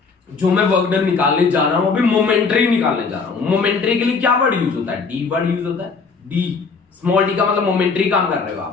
जो मैं वर्क डन निकालने जा रहा हूं अभी मोमेंटरी निकालने जा रहा हूं। मोमेंटरी के लिए क्या वर्ड यूज होता है, डी वर्ड यूज होता है। डी, स्मॉल डी का मतलब मोमेंटरी काम कर रहे हो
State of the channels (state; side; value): quieter; right; 4.8 dB